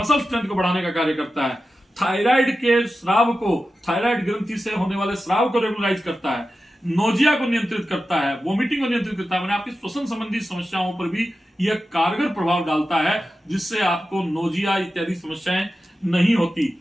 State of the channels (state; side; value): normal; both; correlation 0.92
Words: स्ट्रेंथ को बढ़ाने का कार्य करता है। थायराइड के स्राव को, थायराइड ग्रंथि से होने वाले स्राव को रेगुलराइज करता है। नोजिया को नियंत्रित करता है, वोमिटिंग को नियंत्रित करता है। मैंने आपकी श्वसन संबंधी समस्याओं पर भी यह कारगर प्रभाव डालता है, जिससे आपको नोजिया इत्यादि समस्याएं नहीं